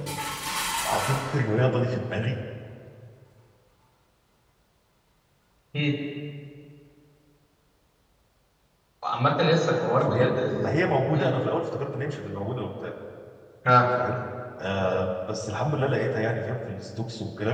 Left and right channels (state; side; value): identical; both; correlation 1.00